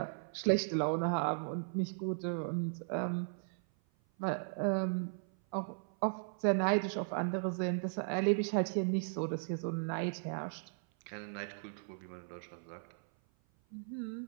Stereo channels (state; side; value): silent; left; 53 dB below the other